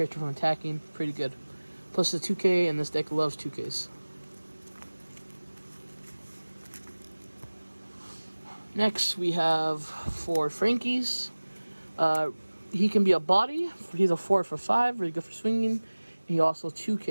from attacking. Pretty good. Plus the 2K, and this deck loves 2Ks. Next, we have 4 Frankies. He can be a body. He's a 4 for 5, really good for swinging. He also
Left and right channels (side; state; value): both; inverted; correlation -1.00